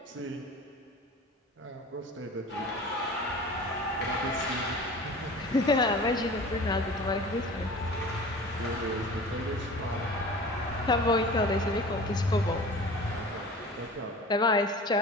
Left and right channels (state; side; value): normal; both; correlation 0.40